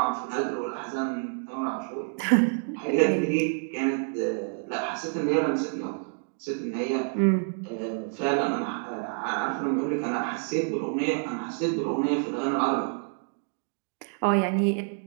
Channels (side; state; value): left; silent; 56 dB below the other